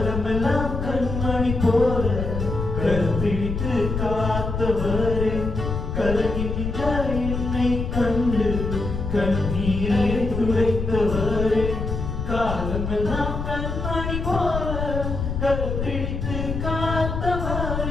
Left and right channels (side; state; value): left; noise; rumble, 4 dB below the sound